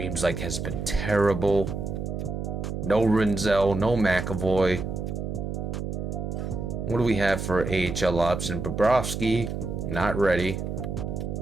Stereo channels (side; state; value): right; noise; hum, 4 dB below the sound